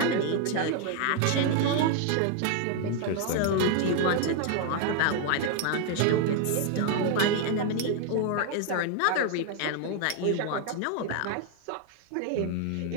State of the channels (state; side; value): different; both; correlation 0.00